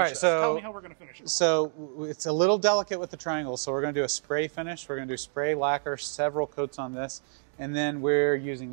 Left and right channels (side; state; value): left; silent; digital silence